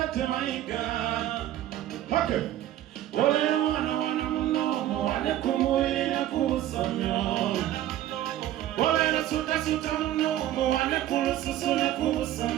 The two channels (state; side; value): quieter; left; 13.0 dB